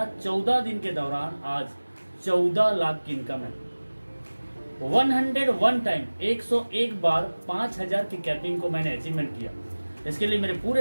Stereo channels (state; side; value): inverted; both; correlation -1.00